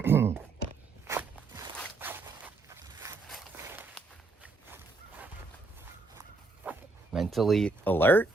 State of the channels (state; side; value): quieter; left; 3.6 dB